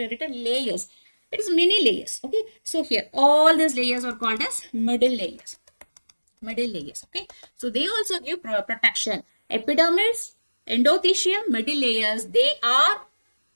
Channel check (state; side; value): inverted; both; correlation -1.00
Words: layers. It is many layers. Okay. So here all these layers are called as middle layers. Middle layers. Okay. So they also give protection. Epidermis, endothecium, middle layers.